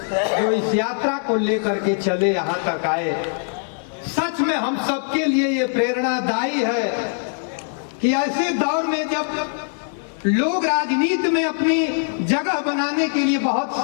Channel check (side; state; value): right; silent; 64 dB below the other